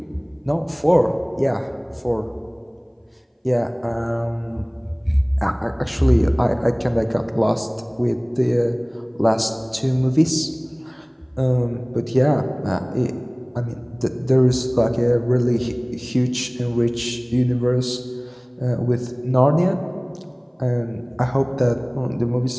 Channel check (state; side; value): identical; both; correlation 1.00